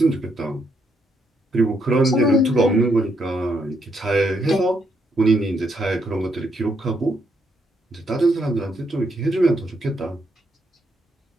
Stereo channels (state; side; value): normal; both; correlation 0.76